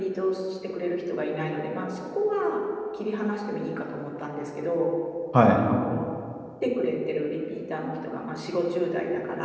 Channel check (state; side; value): identical; both; correlation 1.00